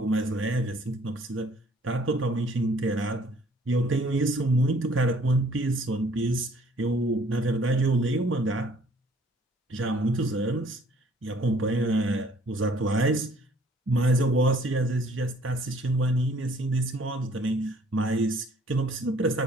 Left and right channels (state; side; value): normal; both; correlation 0.58